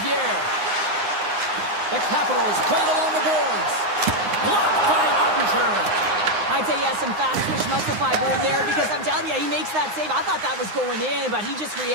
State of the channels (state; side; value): late; left; 9.7 ms